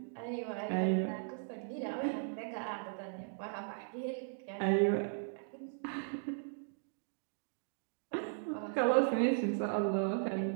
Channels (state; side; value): silent; left; digital silence